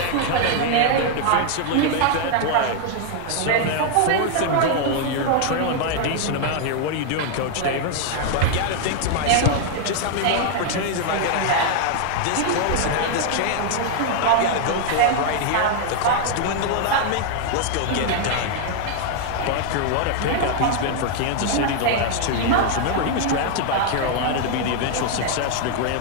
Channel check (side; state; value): both; different; correlation 0.00